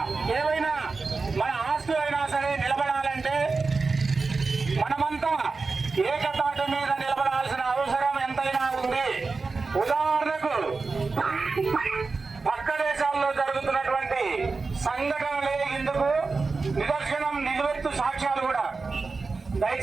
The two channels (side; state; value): left; quieter; 4.2 dB